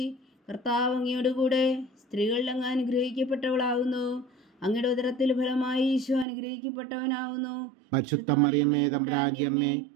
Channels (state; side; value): drops out; left; at 6.2 s